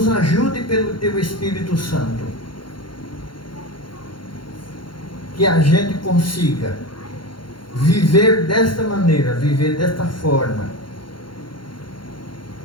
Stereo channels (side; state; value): right; late; 0.73 ms